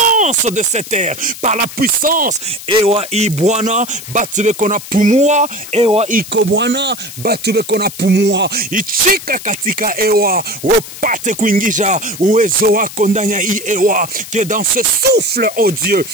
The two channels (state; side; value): noise; left; hiss, 13 dB below the sound